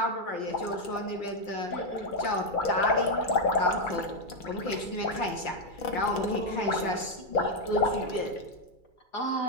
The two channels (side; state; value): right; late; 2.3 ms